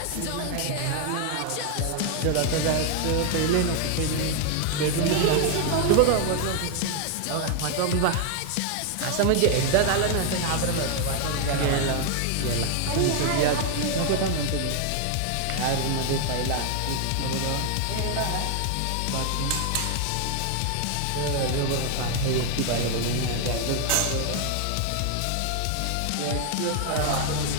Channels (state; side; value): different; both; correlation 0.00